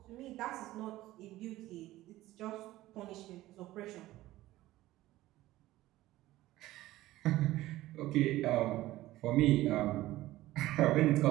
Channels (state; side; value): quieter; left; 16.4 dB